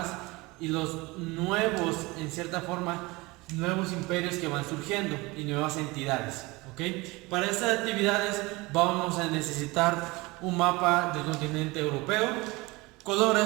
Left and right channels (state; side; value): quieter; left; 23.1 dB